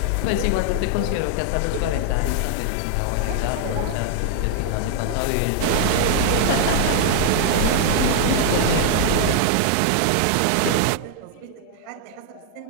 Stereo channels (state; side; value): different; both; correlation 0.00